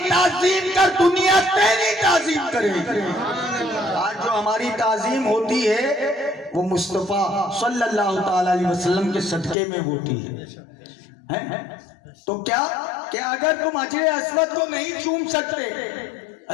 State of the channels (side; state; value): right; drops out; at 9.6 s